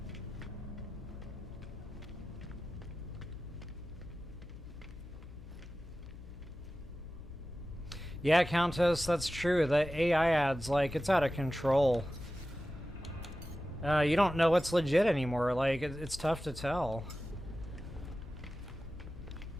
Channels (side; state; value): left; noise; hum, 15 dB below the sound